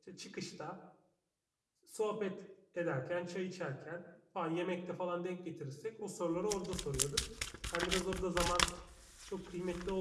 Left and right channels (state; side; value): identical; both; correlation 1.00